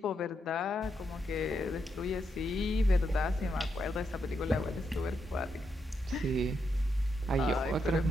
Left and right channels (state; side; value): normal; both; correlation 0.82